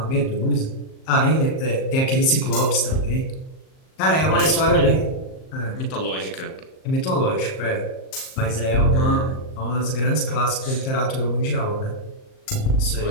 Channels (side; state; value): right; late; 38 ms